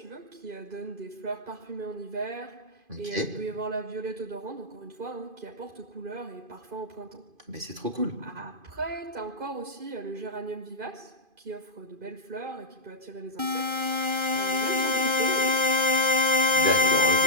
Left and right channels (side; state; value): left; late; 2.5 ms